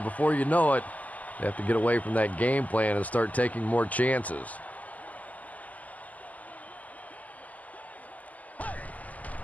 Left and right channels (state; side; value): late; right; 0.076 ms